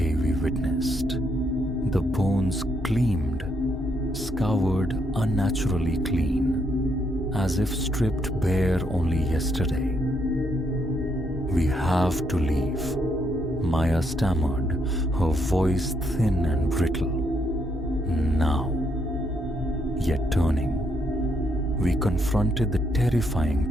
we witnessed. The bones gleamed, scoured unnaturally clean, as if stripped bare only yesterday. We have to leave, Maya stammered, her voice thin and brittle. Now. Yet turning, we confronted the terrifying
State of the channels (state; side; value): normal; both; correlation 0.75